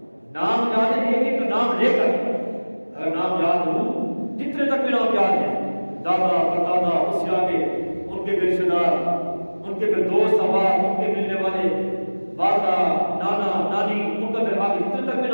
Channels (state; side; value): inverted; both; correlation -1.00